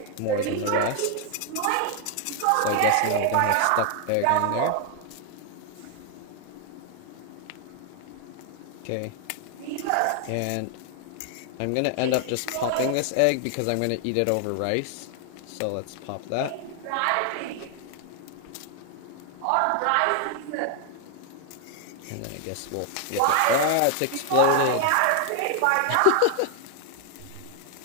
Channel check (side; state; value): both; different; correlation 0.00